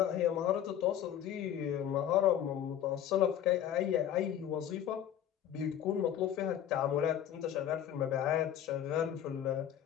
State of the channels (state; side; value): quieter; right; 10.4 dB